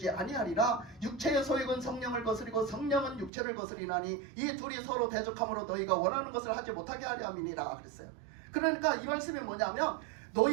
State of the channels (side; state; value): left; drops out; at 3.3 s